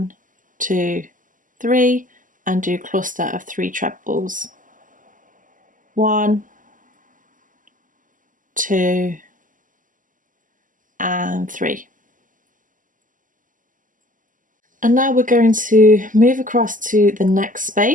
2, 3, and do cluster of 3 trebles, 1, 2 and 3. And now we're going to move across to the next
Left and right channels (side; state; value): left; late; 0.38 ms